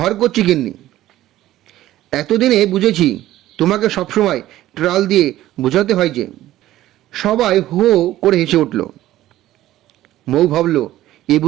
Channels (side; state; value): left; quieter; 14.5 dB